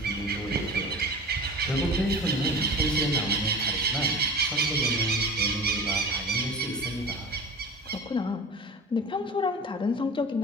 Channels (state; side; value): normal; both; correlation 0.35